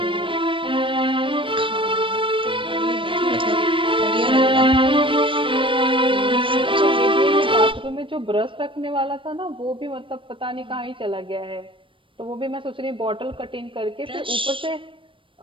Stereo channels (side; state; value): left; late; 0.25 ms